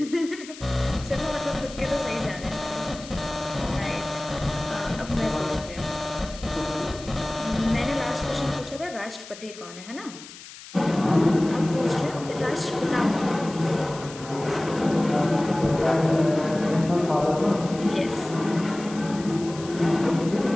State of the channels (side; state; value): left; noise; hiss, 16 dB below the sound